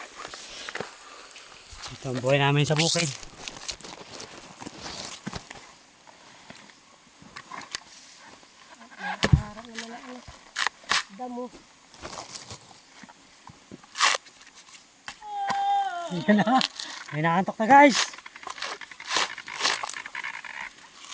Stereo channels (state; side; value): identical; both; correlation 1.00